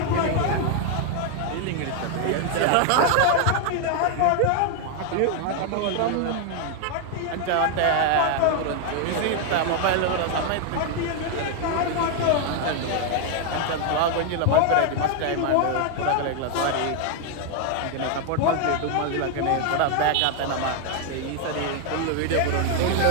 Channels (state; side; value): different; both; correlation 0.00